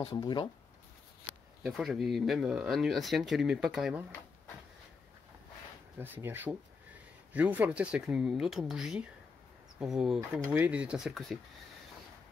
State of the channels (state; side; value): quieter; right; 4.8 dB